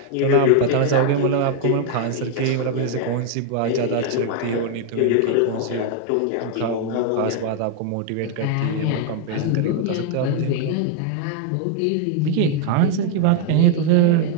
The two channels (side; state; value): both; different; correlation 0.00